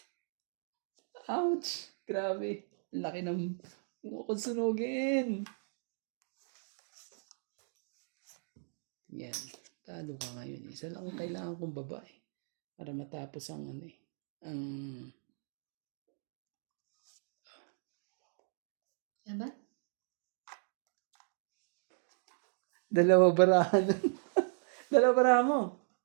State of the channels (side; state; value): left; silent; digital silence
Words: Ouch! Grabe. Laki ng kung sunugin. Yan. Talo ka ngayon. Isa lang ang kailangan kong babae. Para matapos ang ano eh. Ang Diba? dalawa barahan. Dalawa barahan mo.